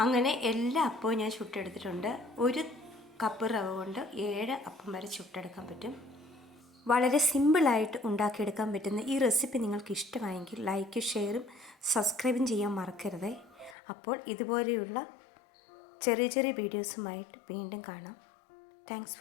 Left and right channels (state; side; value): drops out; right; at 13.8 s